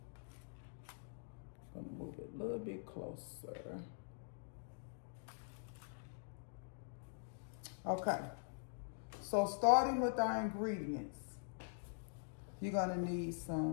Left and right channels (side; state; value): right; silent; digital silence